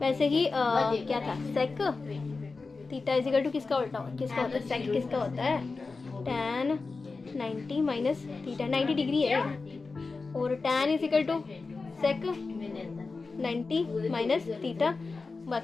ही क्या था? Sec theta is equal to किसका उल्टा किसका होता है? सेक किसका होता है? tan 90 माइनस थीटा, 90 डिग्री है। और tan is equal to sec 90 minus theta.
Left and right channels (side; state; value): right; quieter; 4.1 dB